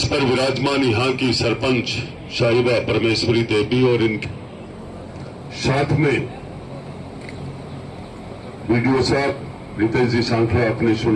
पर विराजमान यहां की सरपंच शाहिबा परमेश्वरी देवी और इनके साथ में वीडियो साहब रितेश जी सांखला आपने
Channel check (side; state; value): both; identical; correlation 1.00